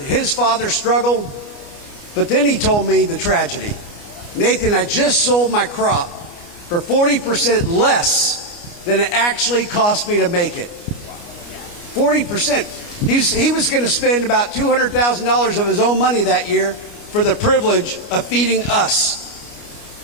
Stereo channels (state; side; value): late; right; 29 ms